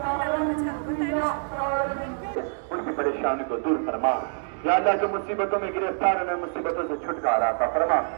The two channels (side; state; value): left; silent; digital silence